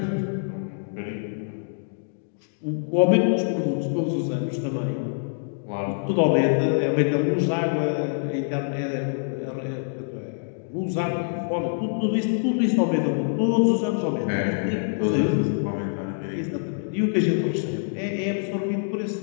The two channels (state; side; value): silent; right; digital silence